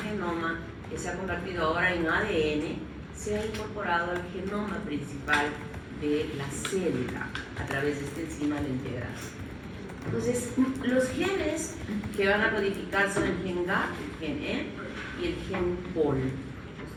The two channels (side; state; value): both; identical; correlation 1.00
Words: que se ha convertido ahora en ADN sea incorporado al genoma principal de la célula a través de esta enzima, la integrasa. Entonces, los genes que van a codificar son el gen GAP, el gen E y el gen POL.